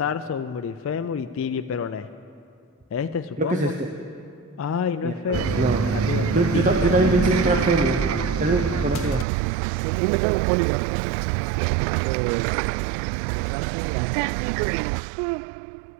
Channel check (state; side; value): drops out; left; at 9.2 s